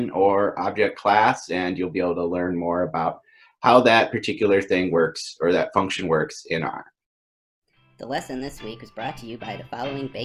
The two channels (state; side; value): identical; both; correlation 1.00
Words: or object class, and you'll be able to learn more about how that particular thing works or that function works in R. The lesson this week was brought to you by the following